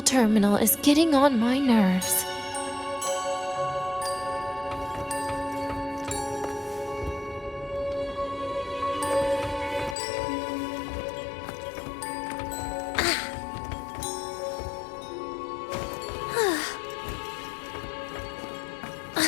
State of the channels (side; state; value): right; drops out; at 10.0 s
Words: is getting on my nerves.